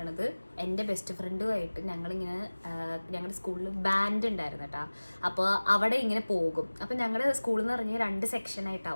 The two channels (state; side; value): inverted; both; correlation -1.00